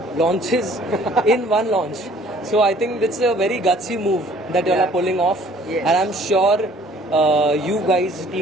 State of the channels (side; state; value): both; normal; correlation 0.55